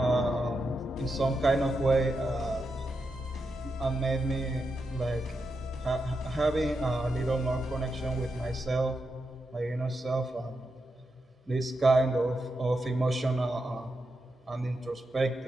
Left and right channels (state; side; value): normal; both; correlation 0.86